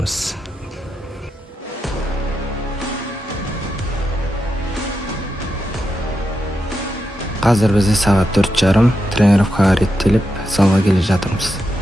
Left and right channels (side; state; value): both; normal; correlation 0.86